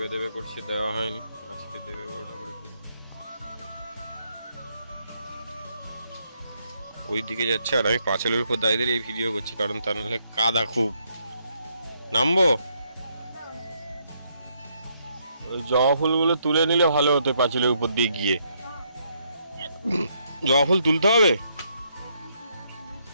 দেবে করছে, দেওয়া হয়নি, আজকে দেবে বড় ঠাকুরের পুজো। ওই দিকে যাচ্ছে আর আমি পাঁচিলের উপর দাঁড়িয়ে এই ভিডিও করছি, কারণ তা নাহলে কাদা খুব। নামবো? ওই জবা ফুলগুলো তুলে নিলে ভালো হতো পাঁচিলের উপর দিয়ে গিয়ে। জবা ফুল তুলতে হবে?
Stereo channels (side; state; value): both; inverted; correlation -0.74